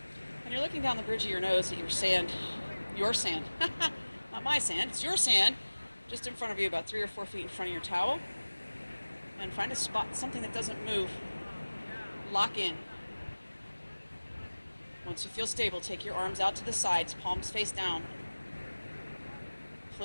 And you're looking down the bridge of your nose at your sand, not my sand, it's your sand, just in front of you, about 3 or 4 feet in front of your towel. And find a spot, something that doesn't move. Lock in. Once you feel stable, take your arms out to the sides, palms face down.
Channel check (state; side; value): inverted; both; correlation -1.00